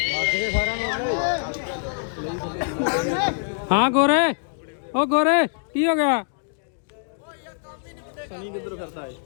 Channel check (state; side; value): silent; right; digital silence